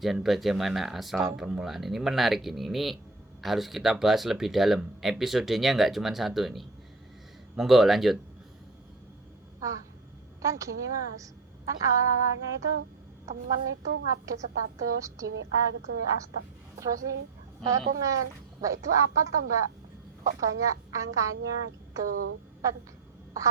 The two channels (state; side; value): quieter; left; 3.7 dB